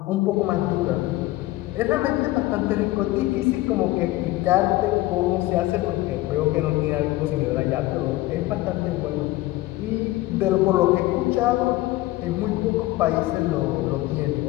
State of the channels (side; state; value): right; quieter; 17.8 dB